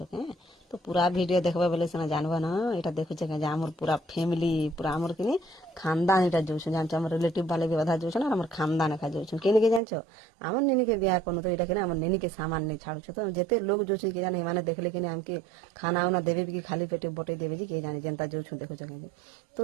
কে? তো পুরা ভিডিও দেখবা বলে সিনা জানবা না। এটা দেখুছে কে যে আমার পুরা ফ্যামিলি পুরা আমার কিনি খানদান এটা যাচ্ছু, জানছো? আমার রিলেটিভ বালে भी অধা যাচ্ছু আর আমার খানদান একা যাচ্ছু। কে নিকে জানছো? আমার নিনিকে বিয়া করনো। তো এটা কিনা আমার নিনিকে সামান নেই ছাড়ছো। তো যেতে লোক যাচ্ছি কে জানে, মানে দেখলে কিনা আমাকে খানা উনা দেবে কি খালি পেটে বটে দেবে যে কে জানি যেনতা যাচ্ছু দেখুছে কে। তো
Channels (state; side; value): drops out; left; at 9.8 s